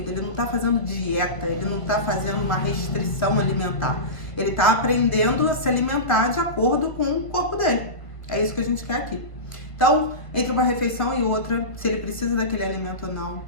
Ele não tá fazendo dieta, ele não tá fazendo uma restrição alimentar. Ele tá aprendendo a se alimentar de acordo com o corpo dele. É isso que a gente quer aqui. Então, entre uma refeição e outra, se ele precisa daquele alimento ou não,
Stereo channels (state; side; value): late; right; 1.5 ms